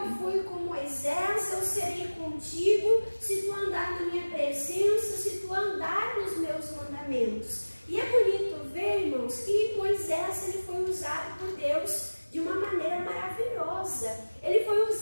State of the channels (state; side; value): inverted; both; correlation -1.00